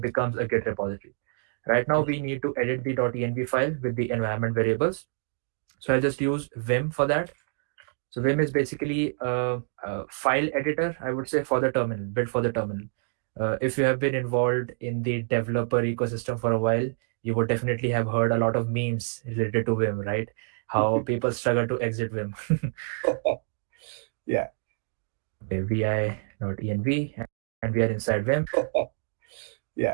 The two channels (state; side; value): silent; left; digital silence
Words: a Git repository. Right now we need to edit the .env file with the environment variables. So I'll just use Vim for that. So Vim is basically a file editor, I would say, for the terminal, built for the terminal. If you have been involved in the developer ecosystem for a while, you would definitely have heard a lot of memes related to Vim, right? How people struggle to exit Vim. Yeah. Okay, vi.env, and we are inside Vim.